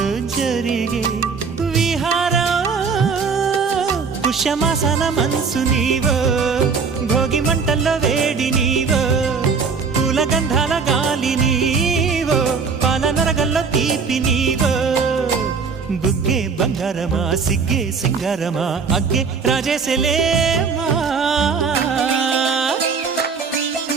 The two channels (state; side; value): quieter; left; 5.4 dB